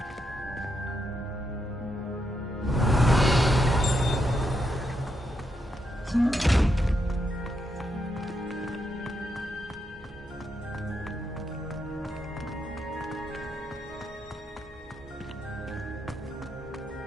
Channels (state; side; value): normal; both; correlation 0.81